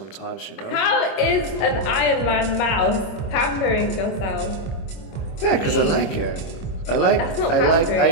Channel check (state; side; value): late; right; 25 ms